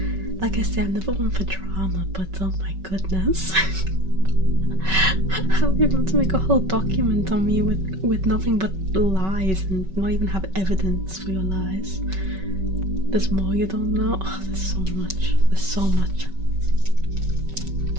Like I said, I'm never one for drama, but oh my goodness. How are you able to make a whole document on me with nothing but lies and not even have evidence for your lies? There's more you don't know. Oh, there's so much. There's so much.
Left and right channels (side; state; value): left; late; 5.3 ms